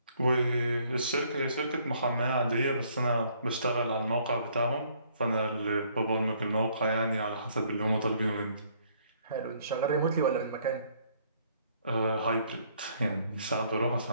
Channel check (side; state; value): both; inverted; correlation -0.64